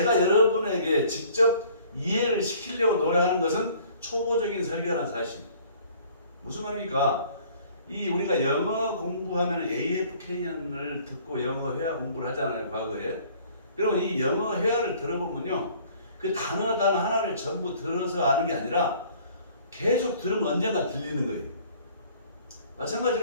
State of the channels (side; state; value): both; inverted; correlation -0.54